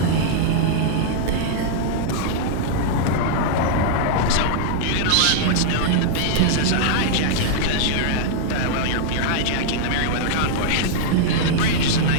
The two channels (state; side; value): different; both; correlation -0.01